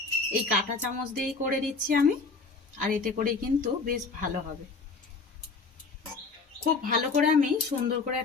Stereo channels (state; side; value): quieter; right; 4.2 dB